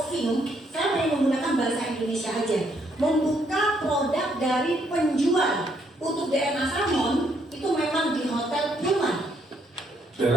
saya mau menggunakan bahasa Indonesia aja. Membuka produk dari penjual. Untuk DNA Salmon itu memang di Hotel Pullman.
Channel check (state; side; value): normal; both; correlation 0.72